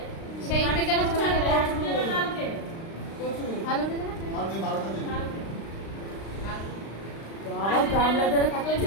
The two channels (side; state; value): right; late; 36 ms